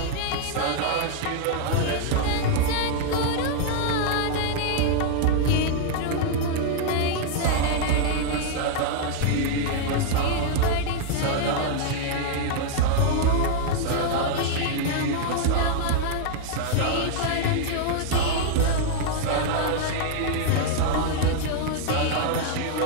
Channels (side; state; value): both; different; correlation -0.01